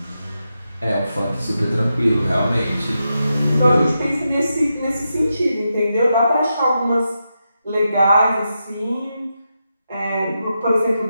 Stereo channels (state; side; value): inverted; both; correlation -0.87